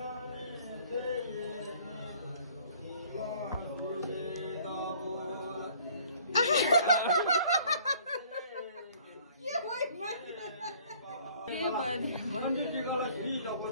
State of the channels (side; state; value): both; inverted; correlation -0.56